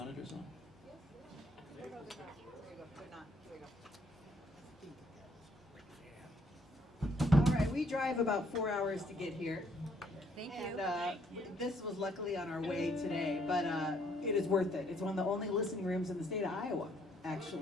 on? There you go. They're not. Here we go. All right, we drive about 4 hours to get here. Thank And you. this was luckily on our way today, but it is worth it. It's one of the only listening rooms in the state of Iowa,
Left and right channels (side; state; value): both; normal; correlation 0.67